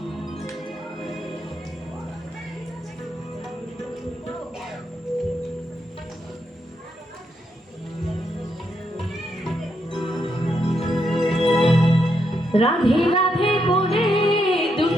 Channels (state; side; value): normal; both; correlation 0.79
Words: রাধে রাধে বলে